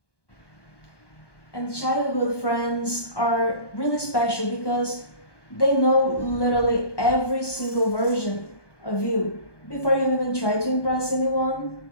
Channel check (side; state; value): right; late; 1.2 ms